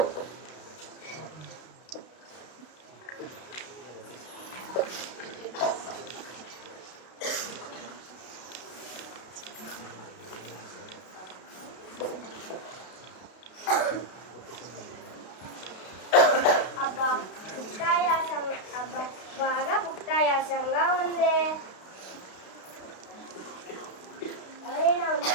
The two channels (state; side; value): late; right; 32 ms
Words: అబ్బా బాగా భుక్తాయాసంగా ఉంది. ఎవరైనా